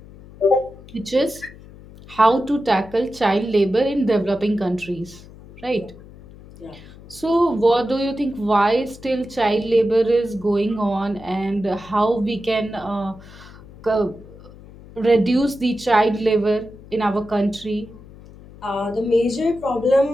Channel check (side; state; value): left; noise; hum, 20 dB below the sound